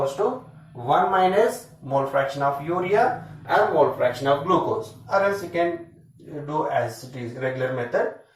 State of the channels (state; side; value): identical; both; correlation 1.00